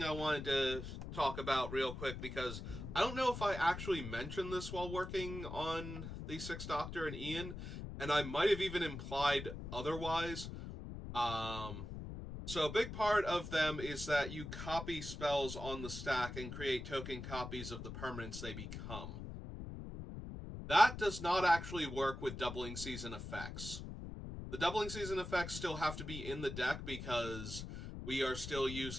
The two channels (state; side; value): noise; left; rumble, 8 dB below the sound